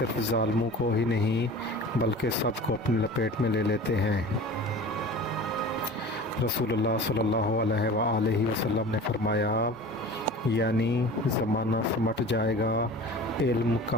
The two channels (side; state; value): both; normal; correlation 0.38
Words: ظالموں کو ہی نہیں بلکہ سب کو اپنی لپیٹ میں لے لیتے ہیں۔ رسول اللہ صلی اللہ علیہ وآلہ وسلم نے فرمایا، یعنی زمانہ سمٹ جائے گا، علم